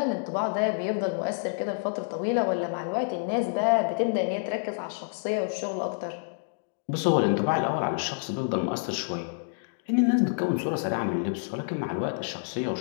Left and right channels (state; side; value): silent; right; digital silence